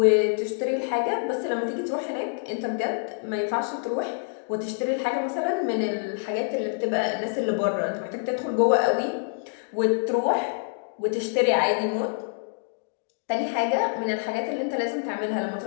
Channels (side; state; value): right; silent; digital silence